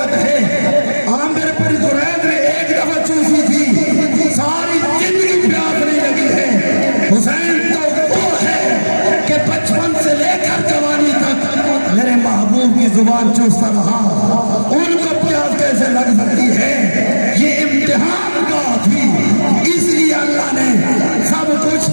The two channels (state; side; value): inverted; both; correlation -1.00